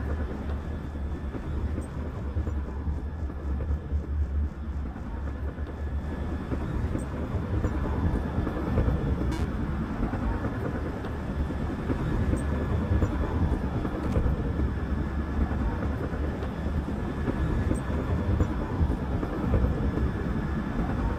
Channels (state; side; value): identical; both; correlation 1.00